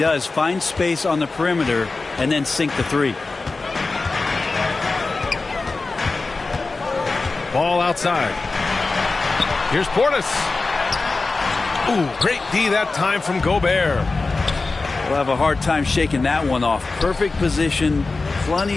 Find space on the perimeter and then sink the three. Ball outside. Here's Portis. Ooh, great D that time from Gobert. We'll have a hard time shaking that one off. Perfect position,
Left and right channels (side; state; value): right; quieter; 3.7 dB